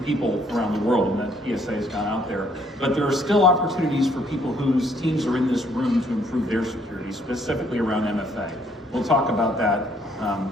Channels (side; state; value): both; normal; correlation 0.66